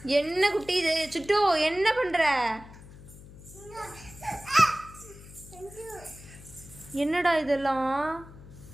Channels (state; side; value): noise; left; hum, 18 dB below the sound